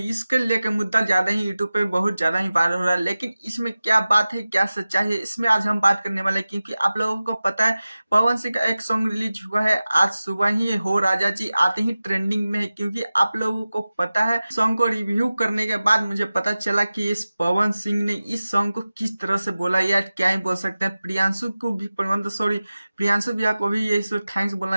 लेके मुद्दा ज्यादा ही यूट्यूब पे बहुत ज्यादा ही वायरल हो रहा है। लेकिन इसमें क्या बात है, क्या सच्चाई है, इसमें आज हम बात करने वाले हैं। क्योंकि आप लोगों को पता है, पवन सिंह का एक सॉन्ग रिलीज हुआ है आज सुबह ही, हो राजा जी, आते ही ट्रेंडिंग में है। क्योंकि आप लोगों को पता है, सॉन्ग को रिव्यू करने के बाद मुझे पता चला कि इस पवन सिंह ने इस सॉन्ग को किस तरह से बोला, या क्या ही बोल सकते हैं। प्रियांशु को भी प्रियांशु भैया को भी ये थैंक्स बोलना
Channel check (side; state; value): both; inverted; correlation -0.96